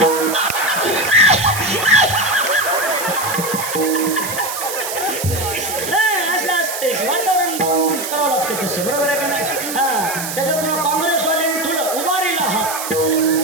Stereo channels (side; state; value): right; noise; hiss, 6 dB below the sound